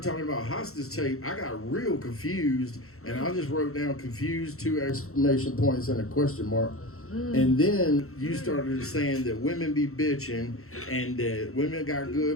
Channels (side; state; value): right; late; 0.63 ms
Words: talking about hostage tape. I got real confused, and I just wrote down confused, 2 exclamation points and a question mark. And then you started saying that women be bitching and that women got